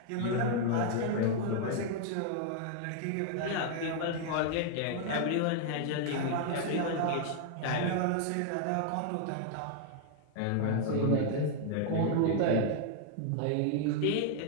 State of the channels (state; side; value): different; both; correlation 0.00